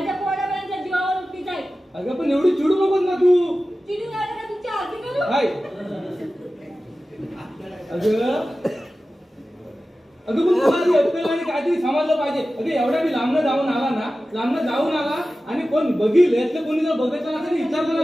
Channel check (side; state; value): both; normal; correlation 0.95